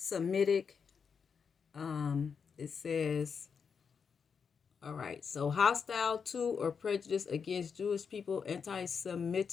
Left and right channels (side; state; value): right; quieter; 6.2 dB